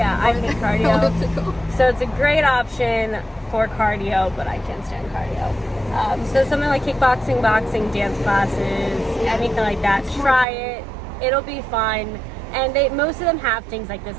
I hate cardio. elliptical. So it's a great option for cardio, but I can't stand cardio. So something like kickboxing, boxing, dance classes, anything like that, try it. It'll be fun. And most of them have things like this,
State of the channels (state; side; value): drops out; left; at 10.5 s